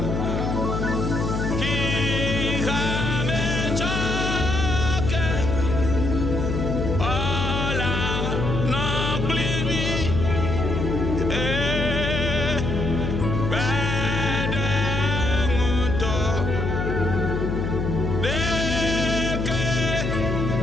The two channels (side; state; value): left; noise; hum, 1 dB below the sound